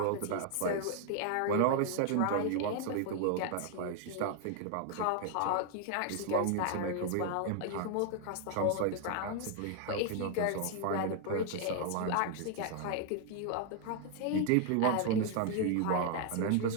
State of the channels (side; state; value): both; different; correlation 0.00